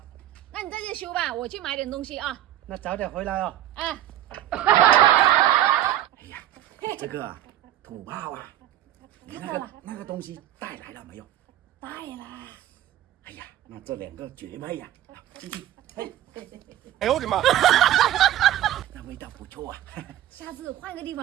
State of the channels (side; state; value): left; quieter; 12.8 dB